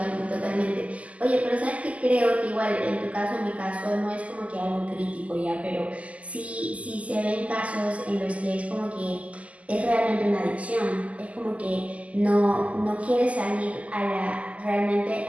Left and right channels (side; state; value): left; late; 0.068 ms